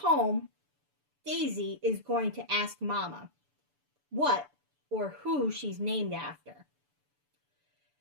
Daisy is going to ask Mama what or who she's named after.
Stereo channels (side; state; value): left; late; 6.9 ms